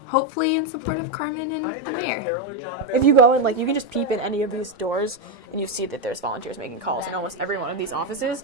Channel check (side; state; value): both; normal; correlation 0.07